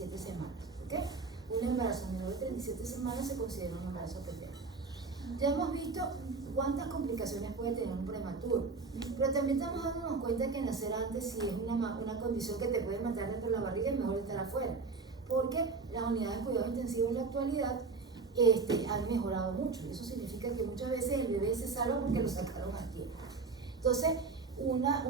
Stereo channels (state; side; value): quieter; left; 4.3 dB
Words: semanas. ¿Ok? Un embarazo menor de 37 semanas se considera un embarazo pretérmino. Ya hemos visto cuántas complicaciones puede tener un prematuro, pero también estamos dándonos cuenta que nacer antes, si es una condición que te puede matar dentro de la barriga, es mejor estar afuera, porque las unidades de cuidado intensivo en la actualidad han mejorado mucho. Eso significa que muchas veces el bebé se salva porque lo sacaron a tiempo. Entonces, una